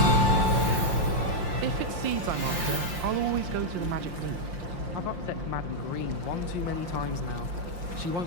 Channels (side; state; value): left; late; 5.7 ms